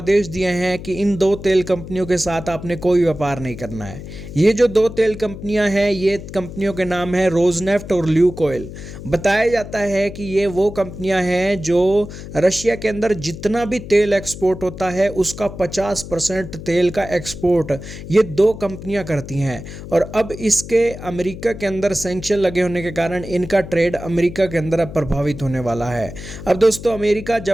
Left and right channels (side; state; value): left; noise; hum, 12 dB below the sound